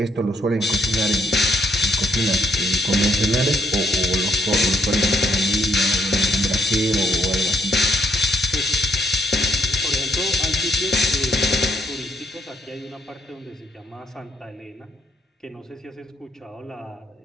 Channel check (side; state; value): both; normal; correlation 0.70